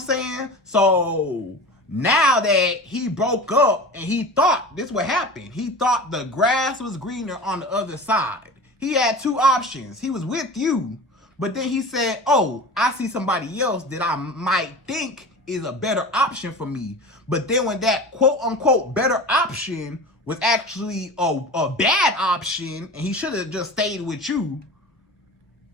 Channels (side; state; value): both; normal; correlation 0.34